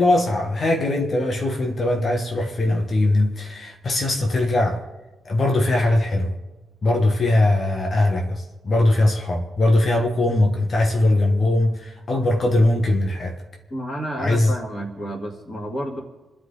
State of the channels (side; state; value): both; normal; correlation 0.89